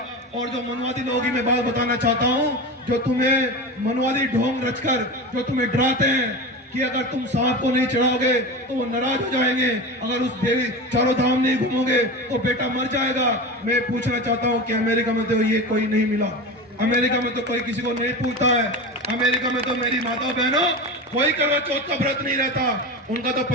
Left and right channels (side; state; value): both; normal; correlation 0.26